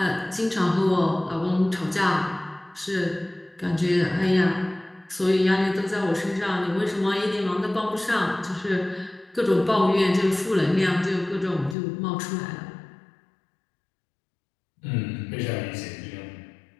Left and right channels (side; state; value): right; drops out; at 11.8 s